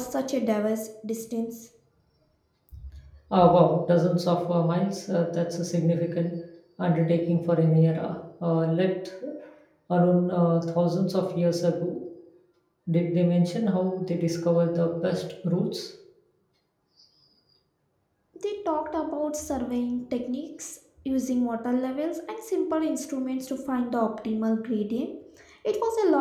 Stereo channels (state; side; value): identical; both; correlation 1.00